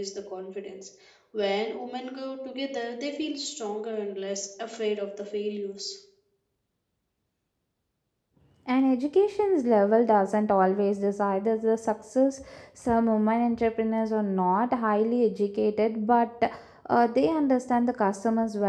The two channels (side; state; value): both; identical; correlation 1.00